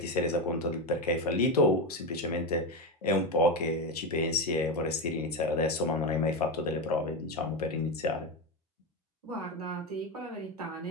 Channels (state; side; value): normal; both; correlation 0.14